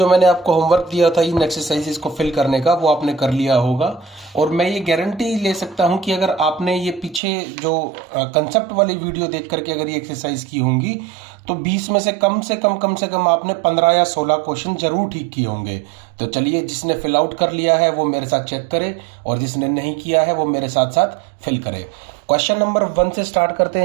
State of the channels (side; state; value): left; drops out; at 7.2 s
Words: मैंने आपको होमवर्क दिया था इन एक्सरसाइजेस को फिल करने का वो आपने कर लिया होगा। और मैं ये गारंटी ले सकता हूँ कि अगर आपने ये पीछे जो कंसेप्ट वाली वीडियो देख करके अगर ये एक्सरसाइज की होंगी तो 20 में से कम आपने 15 या 16 क्वेश्चन जरूर ठीक किए होंगे। तो चलिए, जिसने फिल आउट कर लिया है वो मेरे साथ चेक करे और जिसने नहीं किया है वो मेरे साथ साथ फिल करे। क्वेश्चन नंबर 1 से स्टार्ट करते